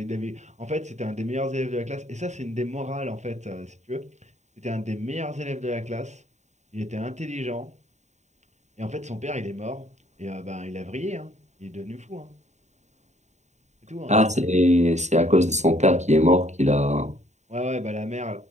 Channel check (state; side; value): late; left; 0.34 ms